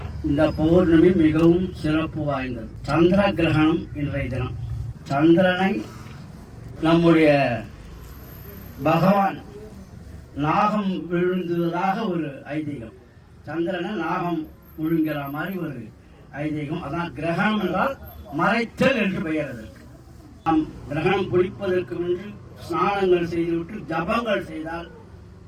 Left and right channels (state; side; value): identical; both; correlation 1.00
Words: இந்த பௌர்ணமி மிகவும் சிறப்பு வாய்ந்தது. சந்திர கிரகணம் இன்றைய தினம். சந்திரனை நம்முடைய பகவான் நாகம் விழுந்ததாக ஒரு ஐதீகம். சந்திரனை நாகம் விழுங்கிற மாதிரி ஒரு ஐதீகம். அதான் கிரகணம் என்றால் மறைத்தல் என்று பெயர். அதற்கு நாம் கிரகணம் பிடிப்பதற்கு முன்பு ஸ்நானங்கள் செய்துவிட்டு ஜபங்கள் செய்தால்,